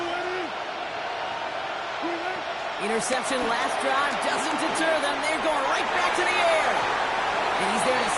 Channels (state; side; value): identical; both; correlation 1.00